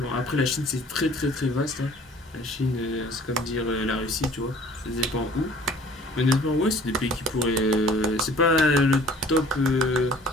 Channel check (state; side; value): normal; both; correlation 0.51